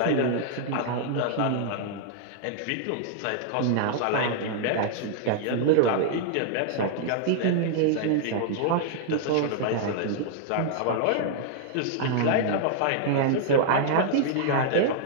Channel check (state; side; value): different; both; correlation -0.01